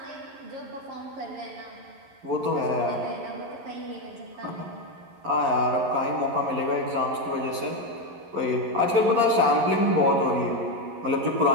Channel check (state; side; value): late; left; 11 ms